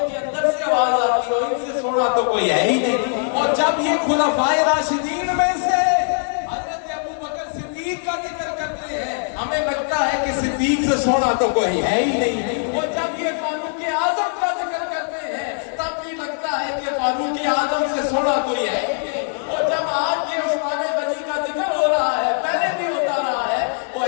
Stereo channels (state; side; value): silent; right; 56 dB below the other